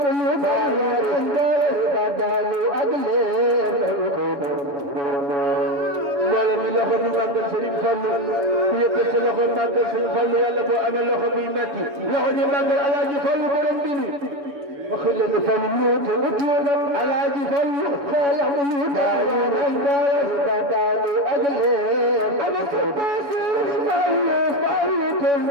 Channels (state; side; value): late; left; 7.1 ms